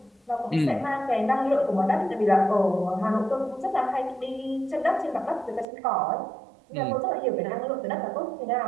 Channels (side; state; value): left; drops out; at 5.7 s